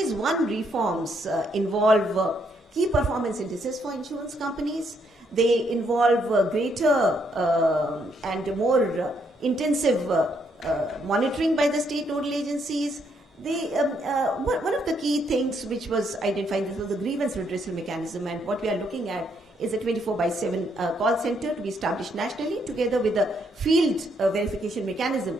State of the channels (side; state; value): both; normal; correlation 0.73